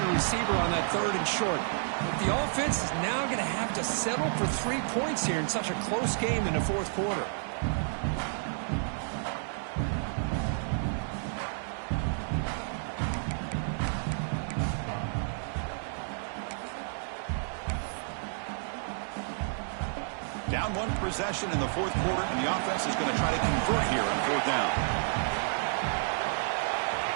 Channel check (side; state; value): left; silent; digital silence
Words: receiver on that third and short. But the offense is now going to have to settle for 3 points here in such a close game in the fourth quarter. Down one possession in the fourth quarter, and the offense is going to try to convert here on fourth down.